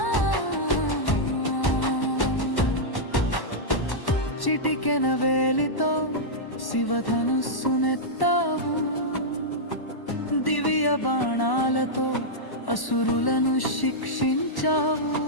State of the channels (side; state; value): right; late; 1.1 ms